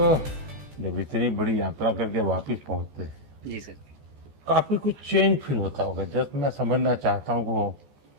जब इतनी बड़ी यात्रा करके वापस पहुंचते हैं, जी सर। काफी कुछ चेंज फील होता होगा। जस्ट मैं समझना चाहता हूँ वो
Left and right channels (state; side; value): late; left; 14 ms